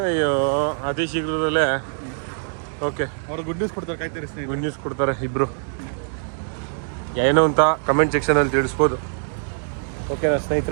ಅಯ್ಯೋ, ಅತಿ ಶೀಘ್ರದಲ್ಲೇ. ಓಕೆ, ಅವ್ರು ಗುಡ್ ನ್ಯೂಸ್ ಕೊಡ್ತಾರೆ, ಕಾಯ್ತಾರೆ ಸ್ನೇಹಿತರೆ. ಗುಡ್ ನ್ಯೂಸ್ ಕೊಡ್ತಾರೆ ಇಬ್ಬರು. ಏನೋ ಅಂತ ಕಮೆಂಟ್ ಸೆಕ್ಷನಲ್ಲಿ ತಿಳಿಸ್ಬೋದು. ಓಕೆನಾ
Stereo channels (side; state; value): left; silent; digital silence